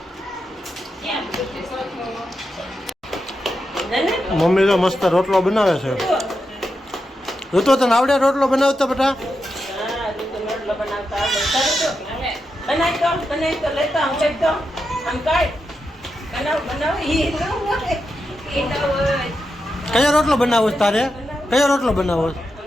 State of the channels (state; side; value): normal; both; correlation 0.87